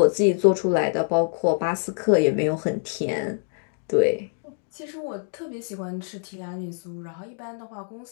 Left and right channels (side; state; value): right; silent; 62 dB below the other